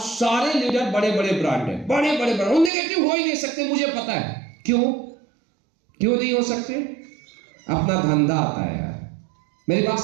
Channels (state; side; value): drops out; left; at 2.7 s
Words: लीडर बड़े बड़े ब्रांड हैं, बड़े बड़े ब्रांड। वो नेगेटिव हो ही नहीं सकते, मुझे पता है। क्यों नहीं हो सकते? अपना धंधा आता है यार। मेरी बात